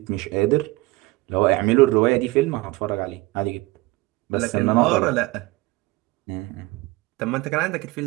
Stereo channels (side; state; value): left; quieter; 21.5 dB